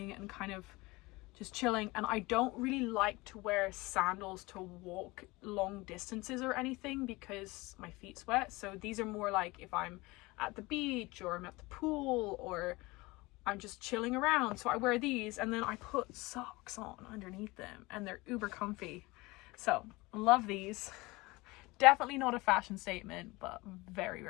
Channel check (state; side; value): quieter; right; 22.5 dB